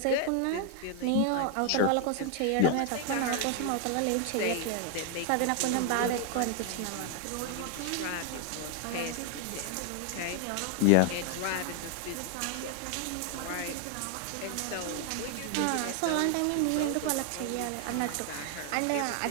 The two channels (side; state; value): both; different; correlation 0.00